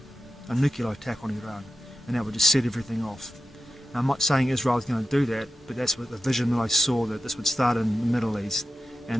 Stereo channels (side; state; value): both; normal; correlation 0.91